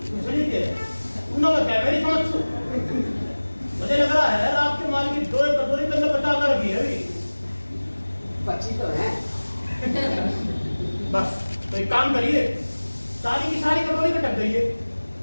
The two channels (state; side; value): inverted; both; correlation -1.00